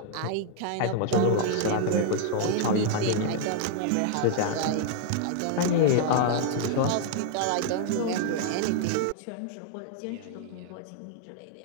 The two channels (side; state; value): both; different; correlation 0.00